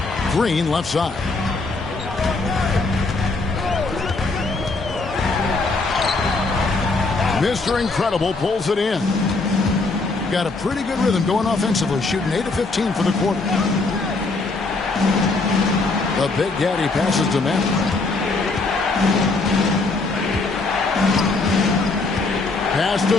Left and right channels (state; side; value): quieter; right; 3.6 dB